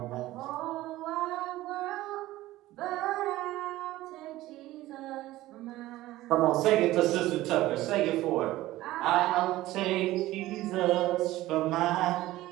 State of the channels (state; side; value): quieter; left; 16.5 dB